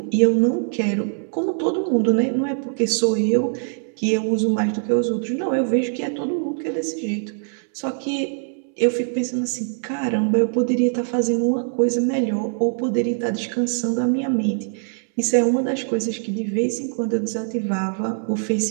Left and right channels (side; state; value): left; silent; 64 dB below the other